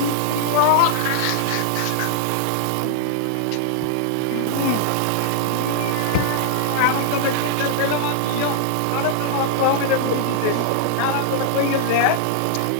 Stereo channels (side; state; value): both; different; correlation -0.01